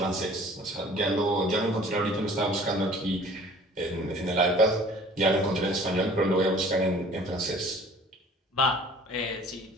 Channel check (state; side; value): normal; both; correlation 0.50